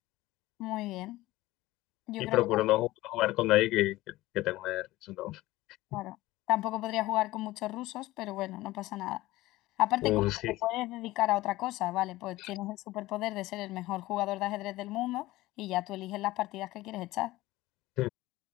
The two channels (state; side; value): quieter; right; 17.9 dB